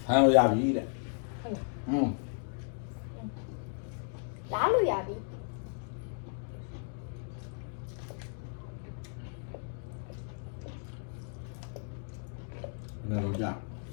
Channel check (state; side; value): silent; right; 55 dB below the other